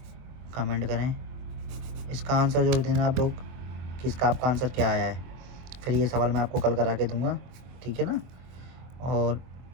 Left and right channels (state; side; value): late; left; 23 ms